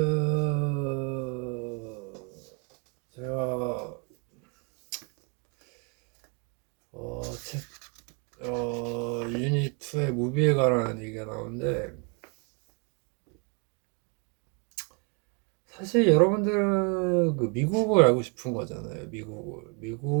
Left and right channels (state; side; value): quieter; left; 34.6 dB